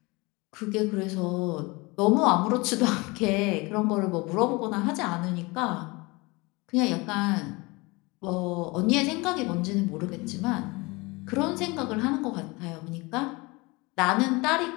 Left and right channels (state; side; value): quieter; right; 25.0 dB